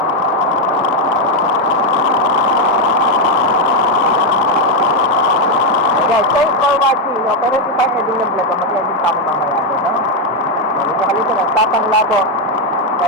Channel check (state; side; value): normal; both; correlation 0.03